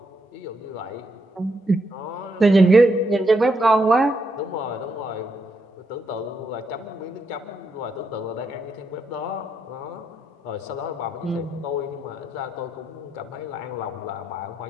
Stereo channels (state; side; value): normal; both; correlation 0.79